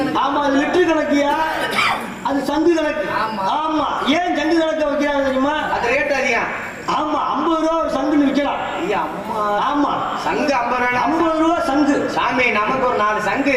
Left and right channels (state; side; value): identical; both; correlation 1.00